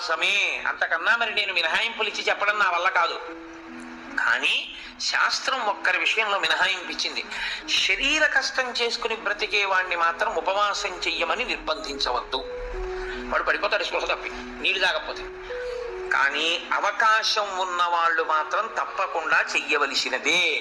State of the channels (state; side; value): identical; both; correlation 1.00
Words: అంతకన్నా మరి నేను మినహాయింపులు ఇచ్చి చెప్పడం నా వల్ల కాదు. కానీ శాస్త్రం ఒక్కరి విషయంలో మినహాయింపించింది. శరీర కష్టం చేసుకుని బ్రతికే వాణ్ణి మాత్రం ఉపవాసం చెయ్యమని నిర్బంధించవద్దు. వాడు పడిపోతాడు స్పృహ తప్పి, నీళ్లు తాగకపోతే. కానీ అవకాశం ఉన్న వాళ్ళు మాత్రం తప్పకుండా చెయ్యవలసినదే,